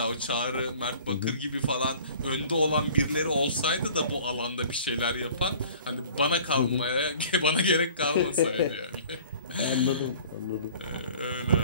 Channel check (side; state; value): both; inverted; correlation -0.48